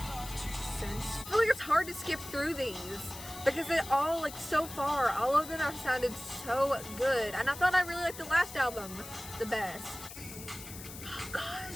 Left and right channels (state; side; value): noise; left; hiss, 13 dB below the sound